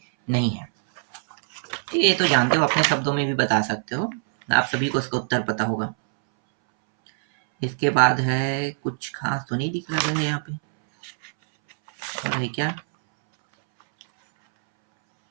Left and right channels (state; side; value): silent; left; 63 dB below the other